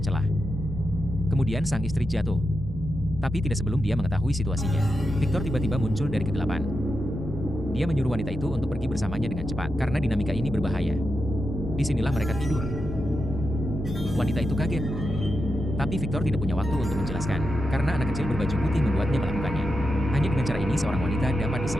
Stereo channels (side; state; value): both; normal; correlation 0.88